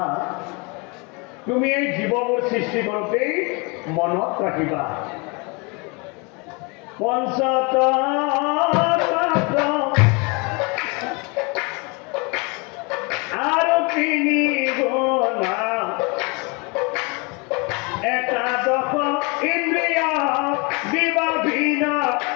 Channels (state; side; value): quieter; right; 30.2 dB